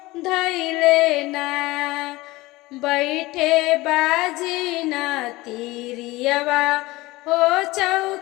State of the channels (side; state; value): right; quieter; 20.1 dB